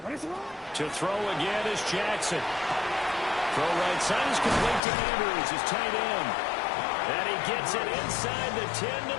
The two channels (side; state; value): right; drops out; at 4.8 s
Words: To throw again is Jackson. Throw right side is complete to Andrews, his tight end. And he gets it inside the 10 to